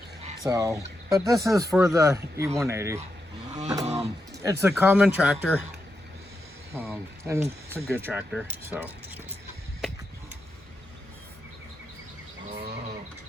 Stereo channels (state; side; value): normal; both; correlation 0.86